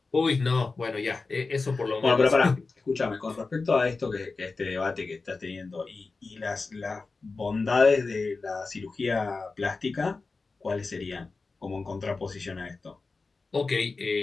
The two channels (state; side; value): quieter; right; 4.0 dB